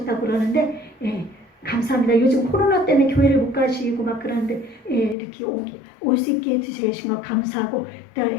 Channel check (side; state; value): right; drops out; at 5.2 s